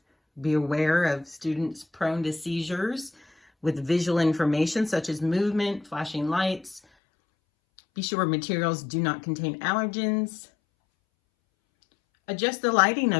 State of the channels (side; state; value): right; drops out; at 6.8 s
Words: be aware of students prone to seizures with visual information such as movement, flashing lights. Be sure materials do not contain allergens. Adjust the lighting